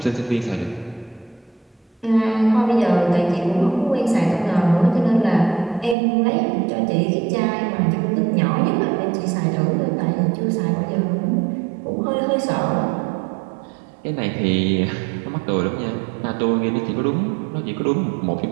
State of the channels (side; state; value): left; drops out; at 6.0 s